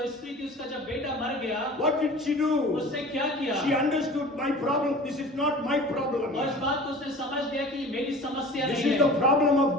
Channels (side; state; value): both; normal; correlation 0.41